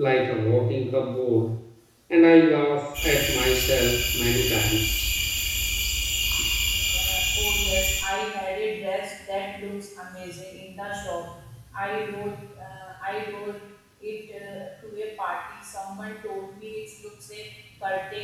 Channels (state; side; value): identical; both; correlation 1.00